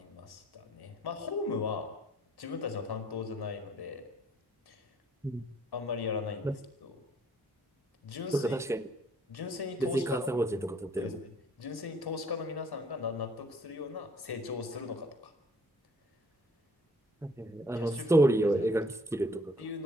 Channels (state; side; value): normal; both; correlation 0.60